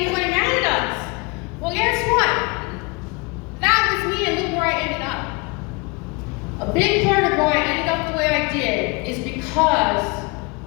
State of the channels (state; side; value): quieter; right; 28.4 dB